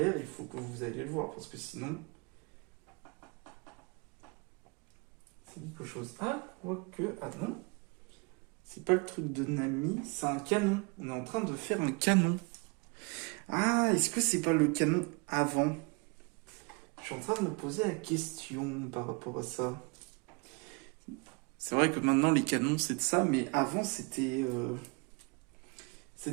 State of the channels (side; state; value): left; quieter; 31.2 dB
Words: il faut que vous alliez le voir, parce que sinon, c'est quelque chose. Ah, quoique. Ah non, c'est pas le truc de Nami, c'est un canon. On est en train de faire un canon. Ah, est-ce que c'est pas le canon avant? Je suis en train de me poser la question par rapport à ça. C'est vrai que maintenant les canons c'est de ça, mais avant c'était